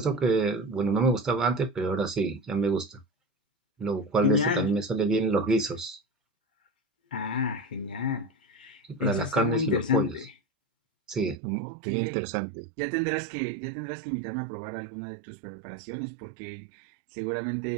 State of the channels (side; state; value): left; drops out; at 11.4 s